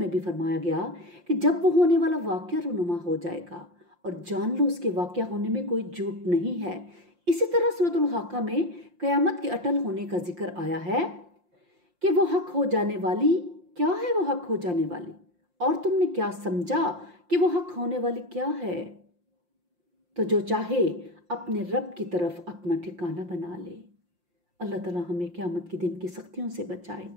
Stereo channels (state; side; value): late; left; 5.7 ms